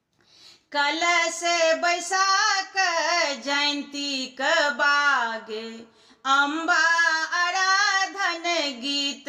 कलश बैसाख जयंती क बागे अम्बा आराधन गीत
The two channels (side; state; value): both; identical; correlation 1.00